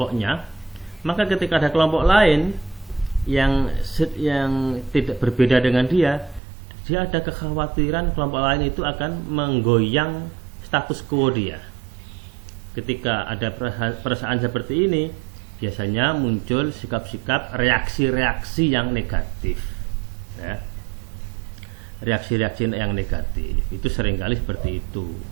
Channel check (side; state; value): left; drops out; at 6.4 s